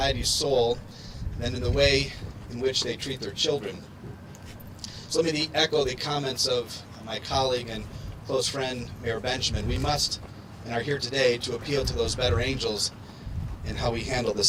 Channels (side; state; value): both; identical; correlation 1.00